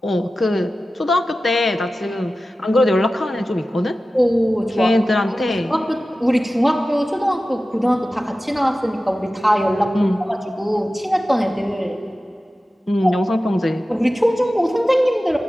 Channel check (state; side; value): normal; both; correlation 0.95